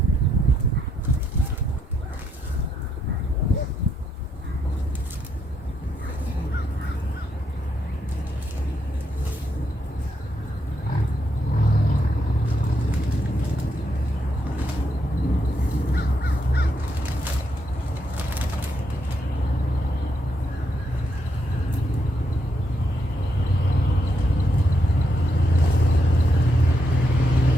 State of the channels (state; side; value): normal; both; correlation 0.78